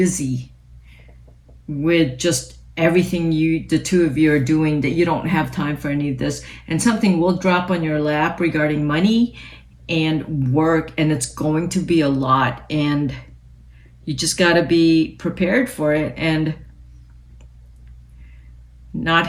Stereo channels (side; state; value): both; identical; correlation 1.00